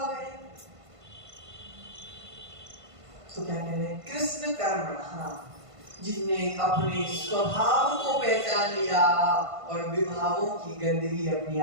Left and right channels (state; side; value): late; left; 1.5 ms